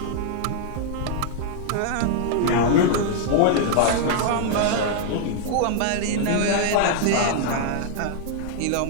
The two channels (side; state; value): both; different; correlation 0.00